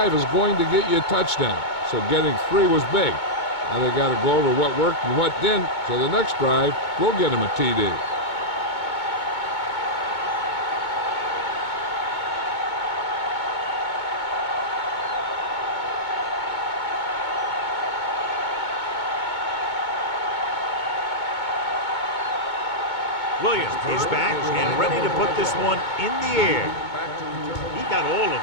is going to get you a touchdown, so getting 3 was big. Now they got to go over what worked and what didn't, so the next drive will get them a TD. Williams is back and ready to put this one in the air. He got all of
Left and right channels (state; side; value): late; right; 2.2 ms